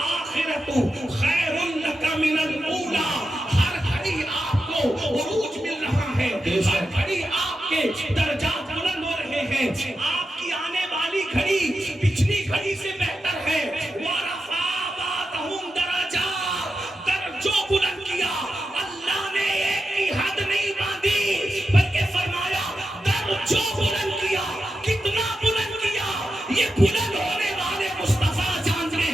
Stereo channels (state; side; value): normal; both; correlation 0.89